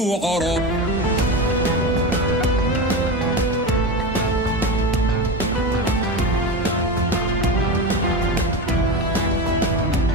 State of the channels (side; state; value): both; normal; correlation 0.22